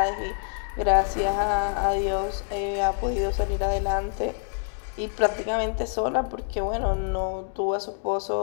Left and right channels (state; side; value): silent; right; digital silence